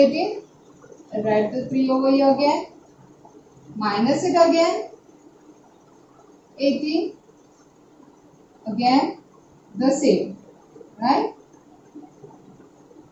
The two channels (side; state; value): both; identical; correlation 1.00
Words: I'll write the 3 over here again. Minus it again. 18. Again the same. Right?